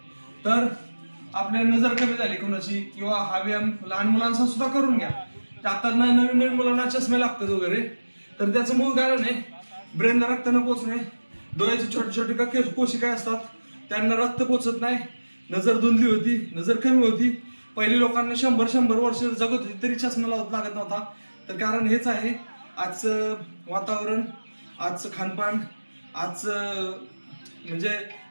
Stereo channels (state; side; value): inverted; both; correlation -1.00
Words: तर आपल्या नजर कमी झाली कोणाची, किंवा हा व्यायाम लहान मुलांचा सुद्धा करून घ्या. आता नवीन नवीन मुलांना चष्मे लागतात वगैरे, तर त्याचं मूळ कारण आहे ब्रेनला रक्त न पोचणे. डोळ्याची छोटे छोटे कोशिका असतात, त्यांना रक्त पोचत नाही, नजर धुंदली होती, नजर कमी होती. पहिली लोकांना 100 वर्ष जगत होती तरी चष्मा लागत नव्हता. तर कारण हेच आहे, आजचं वातावरण, आजचं खानपान, आजचं म्हणजे